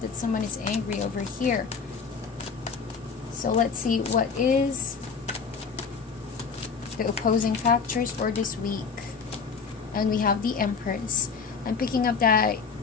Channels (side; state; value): right; quieter; 5.5 dB